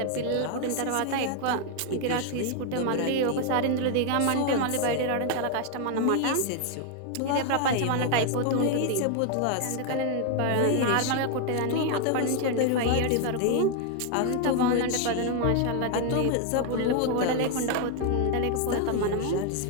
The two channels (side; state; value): both; different; correlation 0.00